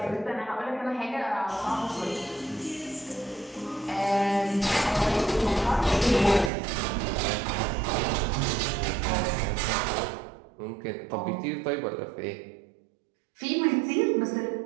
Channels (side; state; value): left; drops out; at 6.5 s